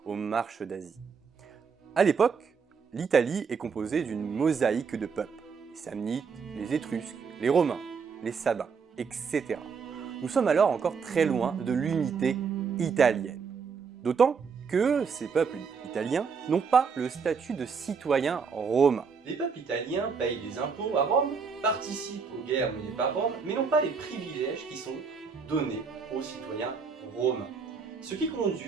aux marches d'Asie. À l'époque, l'Italie est composée d'une mosaïque de peuples, les Samnites, les Étrusques, les Romains, les Sabins, etc. Nous sommes alors encore très loin de l'unité italienne. D'autant que ces peuples italiens n'ont pas le statut de citoyens romains. Les peuples italiens payent des impôts à Rome, participent aux guerres menées par Rome, mais n'ont pas les privilèges qui sont donnés aux citoyens romains. Ce qui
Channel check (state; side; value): quieter; left; 5.6 dB